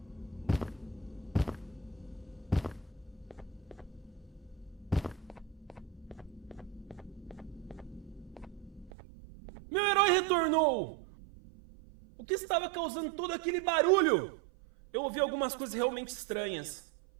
Meu herói retornou! O que estava causando todo aquele barulho? Eu ouvi algumas coisas realmente estranhas.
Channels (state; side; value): drops out; left; at 8.9 s